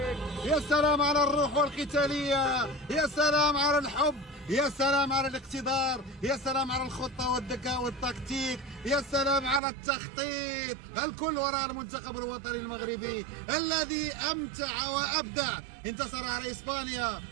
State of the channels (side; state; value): left; drops out; at 9.6 s